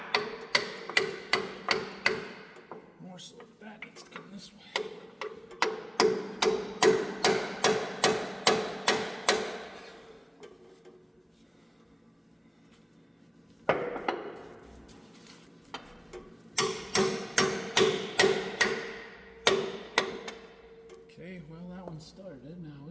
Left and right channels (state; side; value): identical; both; correlation 1.00